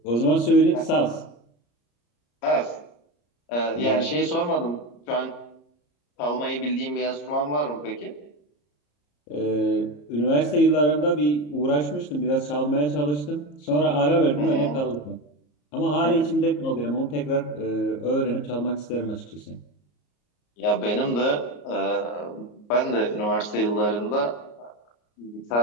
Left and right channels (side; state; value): right; late; 34 ms